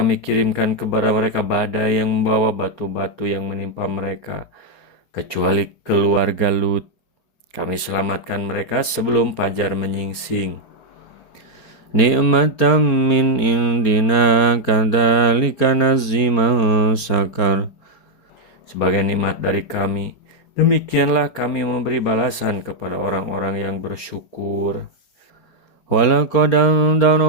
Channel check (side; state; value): right; late; 4.4 ms